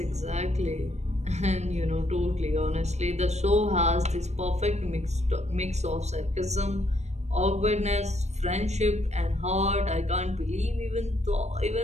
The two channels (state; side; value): late; left; 0.32 ms